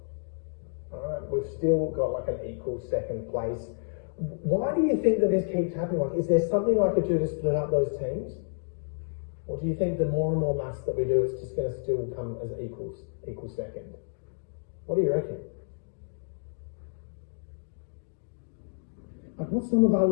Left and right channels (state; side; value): silent; right; digital silence